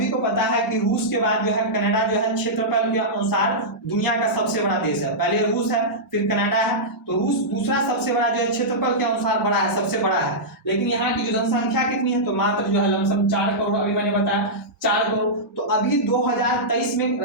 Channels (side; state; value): both; normal; correlation -0.12